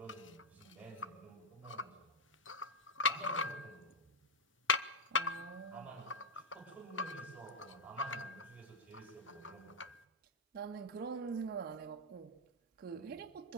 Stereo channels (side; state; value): both; normal; correlation -0.03